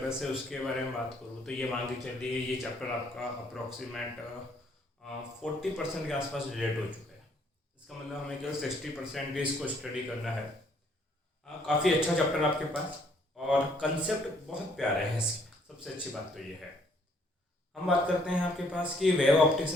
है उसके बारे में बात करूँ तो ये मान के चलिए ये चैप्टर आपका अप्रोक्सीमेट 40% के आसपास रिलेट हो चुका है। इसका मतलब हमें केवल 60% भी इसको स्टडी करना है। काफ़ी अच्छा चैप्टर आपके पास और कंसेप्ट बहुत प्यारे हैं इसके। सबसे अच्छी बात तो ये है। हम बात करते हैं आपके पास कि वेव ऑप्टिक्स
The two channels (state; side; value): normal; both; correlation 0.65